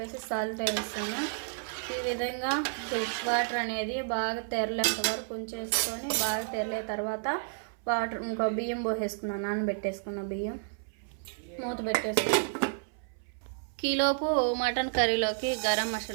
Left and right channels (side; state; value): left; silent; 57 dB below the other